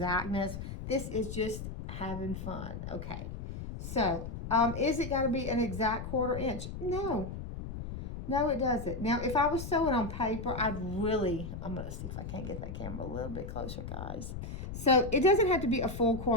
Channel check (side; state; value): left; noise; rumble, 8 dB below the sound